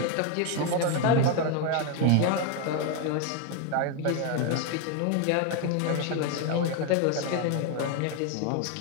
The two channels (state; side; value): different; both; correlation 0.01